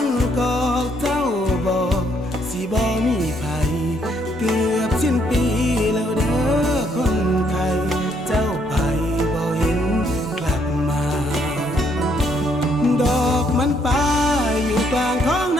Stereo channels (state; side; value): normal; both; correlation 0.70